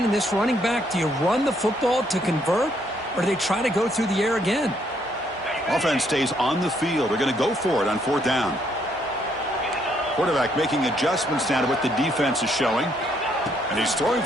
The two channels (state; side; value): normal; both; correlation 0.70